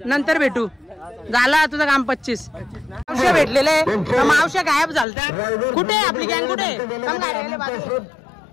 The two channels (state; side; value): drops out; right; at 5.1 s